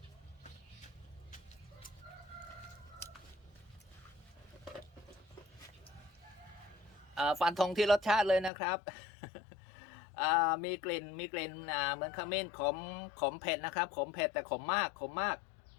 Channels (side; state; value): right; drops out; at 8.5 s